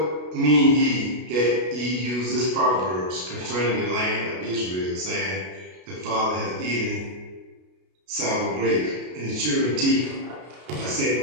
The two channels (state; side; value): late; left; 33 ms